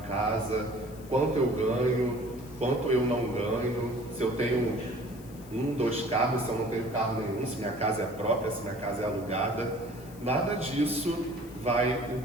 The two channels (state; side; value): noise; left; hiss, 22 dB below the sound